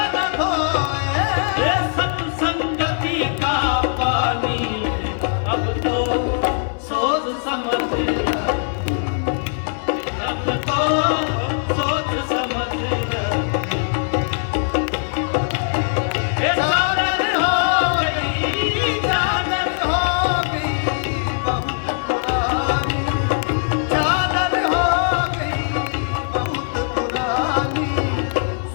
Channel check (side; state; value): right; silent; digital silence